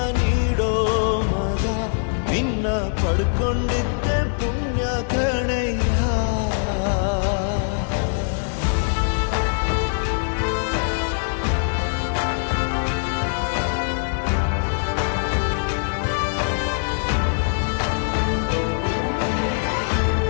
ನೀಡೋ ಮಗ, ನಿನ್ನ ಪಡ್ಕೊಂಡಿದ್ದೆ ಪುಣ್ಯ ಕಣಯ್ಯ.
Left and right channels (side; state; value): right; silent; digital silence